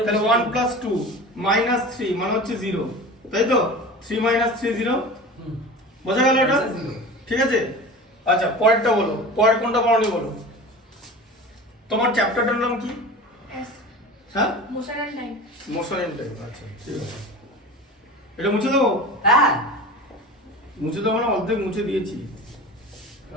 তাহলে বুঝতে 1 প্লাস 2 মাইনাস 3 মানে হচ্ছে 0 তাই তো, 3 মাইনাস 3 0, বোঝা গেল এটা? Answer zero। ঠিক আছে, আচ্ছা পরেরটা বলো, পরের কোনটা পড়নি বলো। তোমার চ্যাপ্টারটার নাম কি? Yes. হ্যাঁ Motion and time. Motion and time, আচ্ছা ঠিক আছে, এটা মুছে দেবো? হ্যাঁ, মুছে দেবো না, অর্ধেক মুছে দিয়েছি,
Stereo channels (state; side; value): normal; both; correlation 0.34